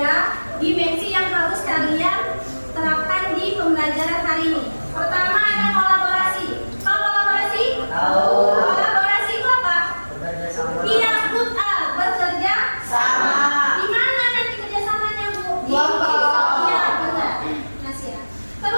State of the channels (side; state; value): both; inverted; correlation -1.00